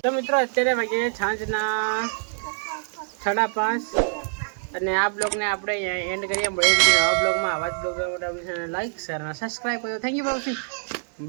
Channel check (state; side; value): silent; left; 62 dB below the other